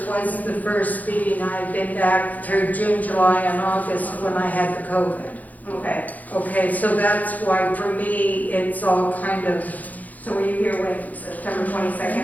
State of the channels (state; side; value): late; right; 0.079 ms